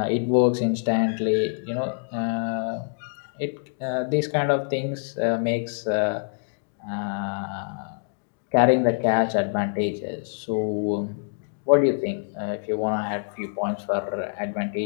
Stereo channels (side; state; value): right; silent; digital silence